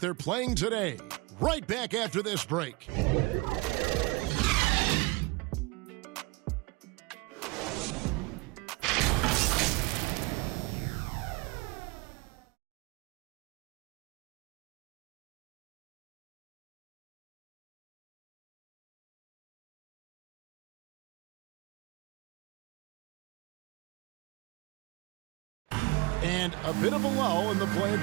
playing today. Right back after this break. And a bit of a lull in the play of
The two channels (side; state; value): left; quieter; 25.6 dB